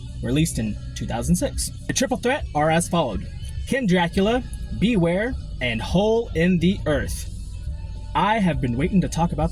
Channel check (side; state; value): both; identical; correlation 1.00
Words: released in 2006. The triple threat are as followed: Kimdracula, Beware, and Hole in the Earth. I have been waiting to talk about